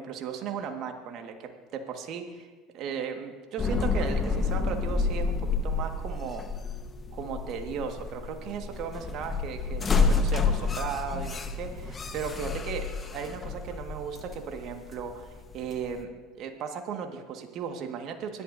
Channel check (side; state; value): both; normal; correlation 0.43